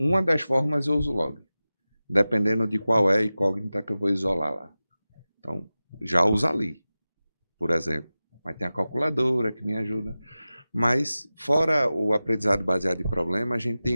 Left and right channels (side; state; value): both; inverted; correlation -0.96